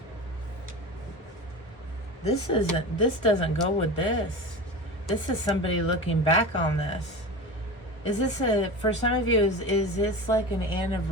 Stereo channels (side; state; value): both; normal; correlation 0.29